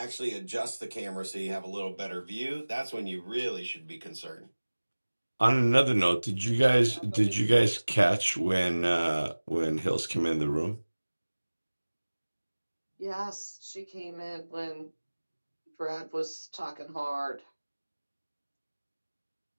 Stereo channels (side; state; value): both; inverted; correlation -1.00